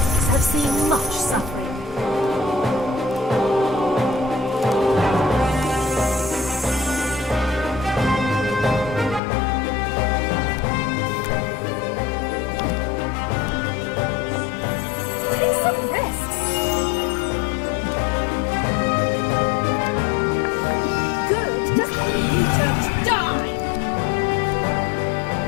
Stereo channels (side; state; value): right; drops out; at 9.2 s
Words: have seen much suffering.